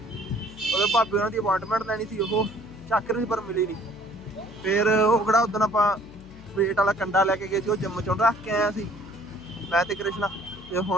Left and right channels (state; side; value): noise; left; hum, 20 dB below the sound